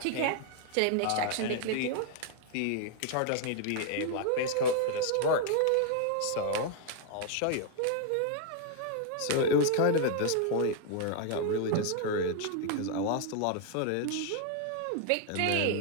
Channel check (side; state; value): both; different; correlation 0.00